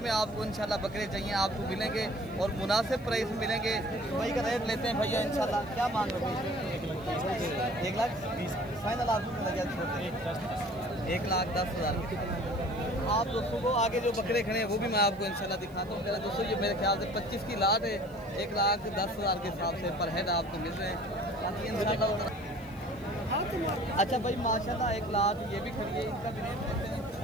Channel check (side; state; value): right; noise; hiss, 28 dB below the sound